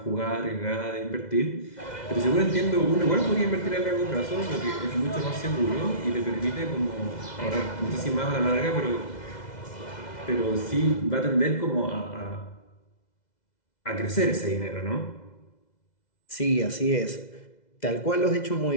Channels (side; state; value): right; late; 2.0 ms